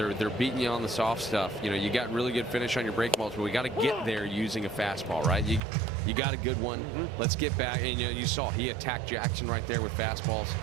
beating you on the soft stuff. You know, you got really good finish on your breaking balls, but we got to get there using a fastball, right? You got a good one. Let's get back. And you know, you saw he attacked Jackson right there with fastballs.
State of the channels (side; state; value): left; drops out; at 5.6 s